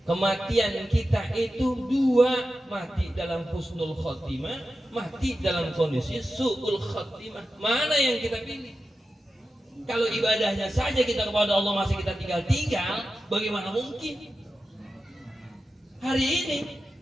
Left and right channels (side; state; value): both; normal; correlation 0.92